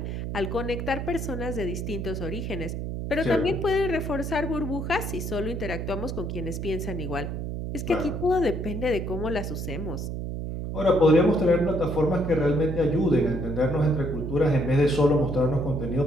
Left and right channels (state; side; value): noise; right; hum, 4 dB below the sound